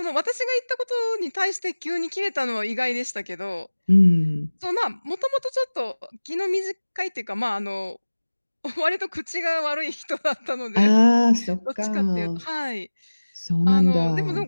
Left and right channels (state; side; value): inverted; both; correlation -1.00